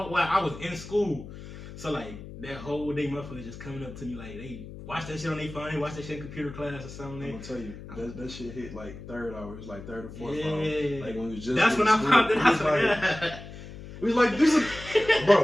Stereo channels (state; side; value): noise; left; hum, 13 dB below the sound